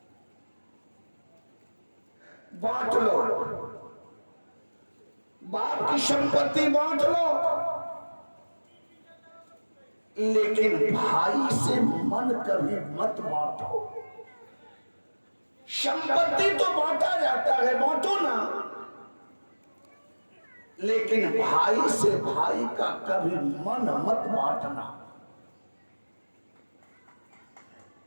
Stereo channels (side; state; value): both; inverted; correlation -1.00